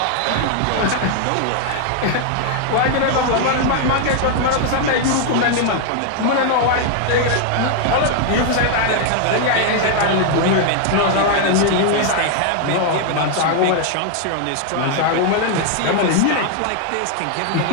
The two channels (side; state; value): both; different; correlation 0.00